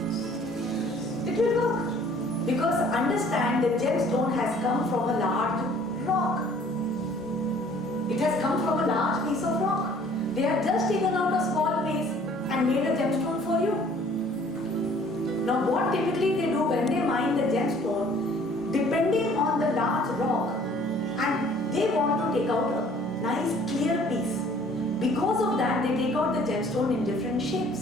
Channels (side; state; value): both; normal; correlation 0.55